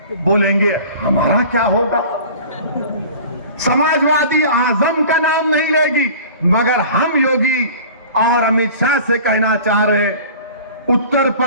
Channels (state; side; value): inverted; both; correlation -0.42